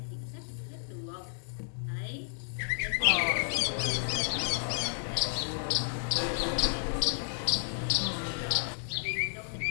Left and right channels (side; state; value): right; silent; digital silence